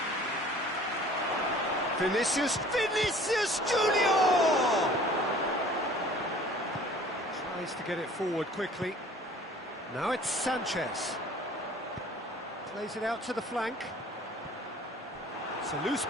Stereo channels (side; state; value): both; normal; correlation 0.49